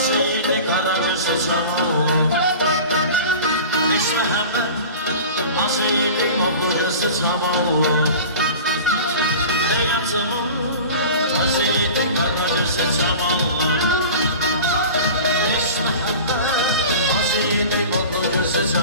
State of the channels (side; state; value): both; inverted; correlation -0.37